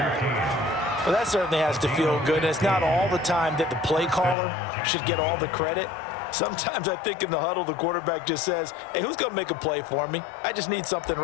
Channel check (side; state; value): right; drops out; at 4.4 s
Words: Well, that certainly has to feel good. And it's not all the time that the play caller should get all the credit. Sometimes I think in the huddle, the quarterback just says, hey, who's going to make a play for me? I just need something